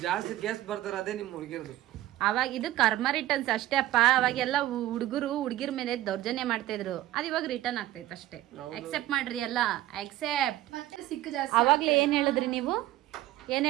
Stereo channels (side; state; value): left; quieter; 14.7 dB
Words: ಜಾಸ್ತಿ ಕೇಸ್ ಬರ್ತಾರೆ, ಅದೇ ನಿಮ್ ಹುಡುಗಿರ್ದು. ಅವಾಗ ಇದು ಕರ್ಮ ರಿಟರ್ನ್ಸ್ ಅಷ್ಟೇ ಅಪ್ಪ. ಅವಾಗೆಲ್ಲ ಹುಡುಗಿರ ಮೇಲೆ ದೌರ್ಜನ್ಯ ಮಾಡ್ತಾ ಇದ್ರು. ಅದು ಇವಾಗ ರಿಟರ್ನ್ ಆಗ್ತೈತೆ ಅಷ್ಟೇ. ಅಕ್ಸೆಪ್ಟ್ ಮಾಡ್ರಿ ಎಲ್ಲ, ಅಕ್ಸೆಪ್ಟ್. ಅವಾಗ್ಲೇ ಏನ್ ಹೇಳಿದ್ರಿ ನೀವು? ಏನ್